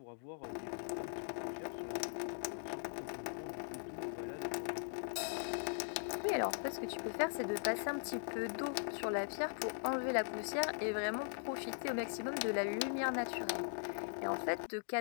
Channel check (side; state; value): right; silent; digital silence